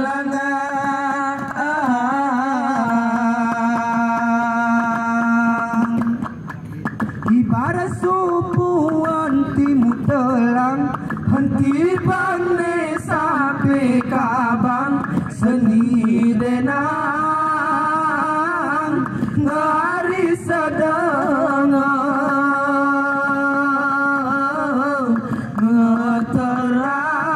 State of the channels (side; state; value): both; identical; correlation 1.00